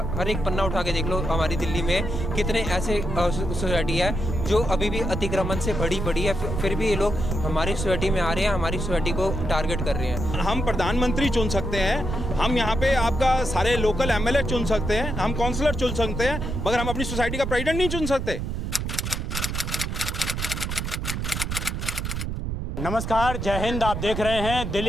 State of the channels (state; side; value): noise; right; rumble, 3 dB below the sound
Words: हर एक पन्ना उठा के देख लो। हमारी दिल्ली में कितने ऐसे सोसाइटी है जो अभी भी अतिक्रमण से बड़ी है, फिर भी ये लोग हमारी सोसाइटी में आ रहे हैं, हमारी सोसाइटी को टारगेट कर रहे हैं। हम प्रधानमंत्री चुन सकते हैं, हम यहाँ पे आपका सारे लोकल एमएलए चुन सकते हैं, हम काउंसलर चुन सकते हैं, मगर हम अपनी सोसाइटी का प्रेसिडेंट नहीं चुन सकते। नमस्कार, जय हिंद। आप देख रहे हैं